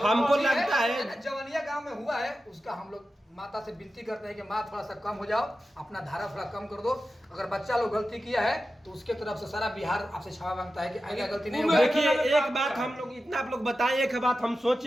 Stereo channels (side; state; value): both; normal; correlation 0.92